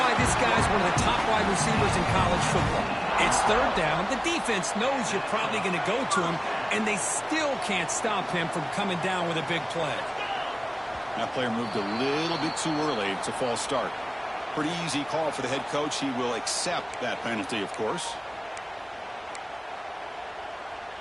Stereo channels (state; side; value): identical; both; correlation 1.00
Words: this guy's one of the top wide receivers in college football. It's third down. The defense knows you're probably going to go to him, and they still can't stop him from coming down with a big play. That player moved a little bit too early. It's a false start. Pretty easy call for the head coach. He will accept that penalty, of course.